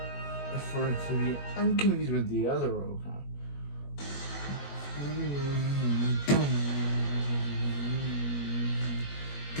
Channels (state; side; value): late; right; 21 ms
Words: for it to be unconfused with the other Robocop.